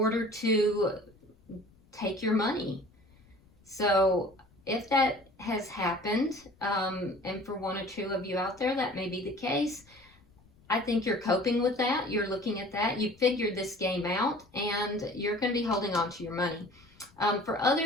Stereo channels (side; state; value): left; noise; rumble, 29 dB below the sound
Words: to take your money. So if that has happened, and for one or two of you out there, that may be the case, I think you're coping with that. You're looking at that. You figured this game out, and you're going to be holding on to your money. For